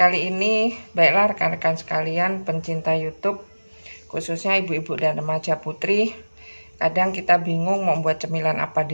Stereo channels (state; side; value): inverted; both; correlation -1.00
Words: ini, baiklah rekan-rekan sekalian pencinta YouTube, khususnya ibu-ibu dan remaja putri, kadang kita bingung mau buat cemilan apa